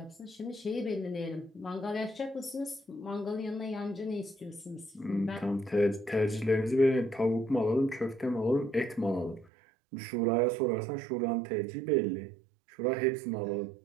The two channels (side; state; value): left; drops out; at 9.5 s